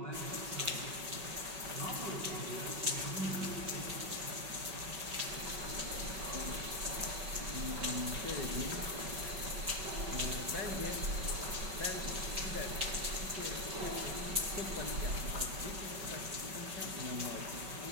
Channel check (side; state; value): left; late; 5.3 ms